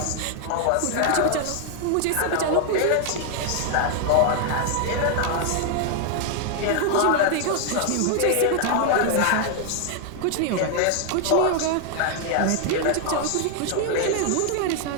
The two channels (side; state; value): both; different; correlation 0.00